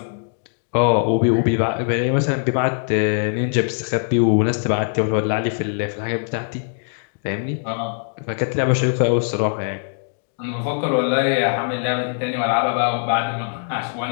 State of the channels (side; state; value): right; silent; digital silence